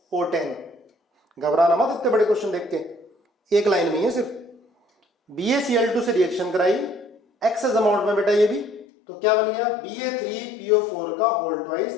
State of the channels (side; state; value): right; drops out; at 8.8 s